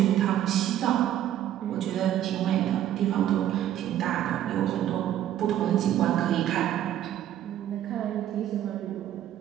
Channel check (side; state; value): left; quieter; 11.7 dB